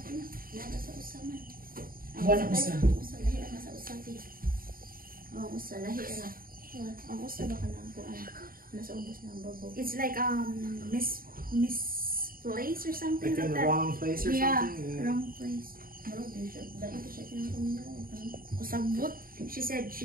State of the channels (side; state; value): left; late; 0.42 ms